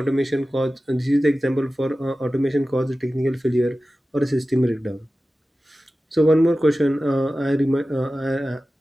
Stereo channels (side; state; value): both; normal; correlation 0.95